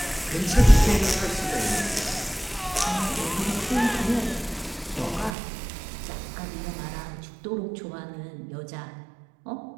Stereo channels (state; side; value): drops out; left; at 5.4 s